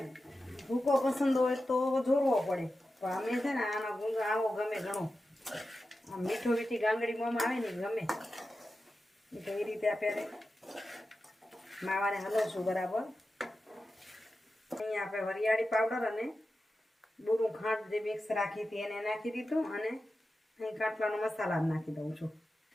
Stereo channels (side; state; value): both; normal; correlation 0.92